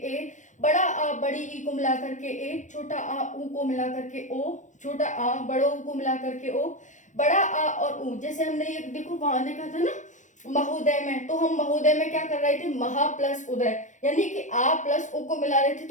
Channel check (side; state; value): right; late; 0.36 ms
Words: बड़ा आ बड़ी ई को मिलाकर के ए, छोटा आ ऊ को मिलाकर के ओ, छोटा आ बड़ो ऊ को मिलाकर के ओ, बड़ा आ और ऊ। जैसे हमने ये देखो वहां देखा था ना महोदय में, तो हम महोदय में क्या कर रहे थे, महा प्लस उदय, यानी कि आ प्लस ओ को मिला रहे थे